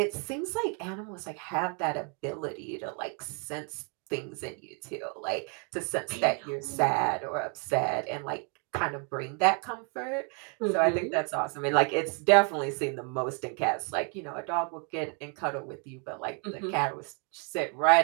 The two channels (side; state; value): left; quieter; 38.2 dB